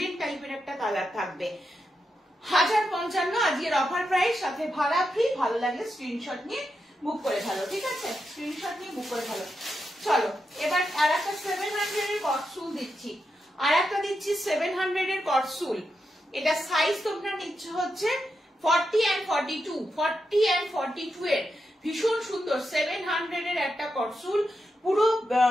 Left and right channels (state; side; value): normal; both; correlation 0.86